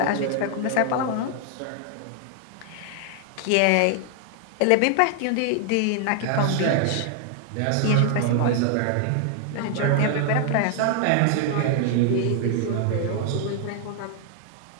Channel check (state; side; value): different; both; correlation 0.00